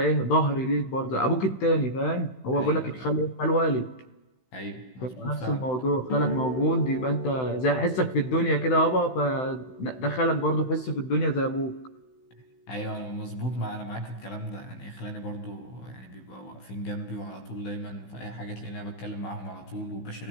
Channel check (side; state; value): right; late; 16 ms